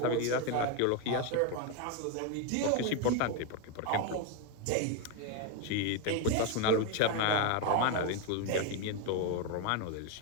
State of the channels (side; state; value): both; different; correlation 0.01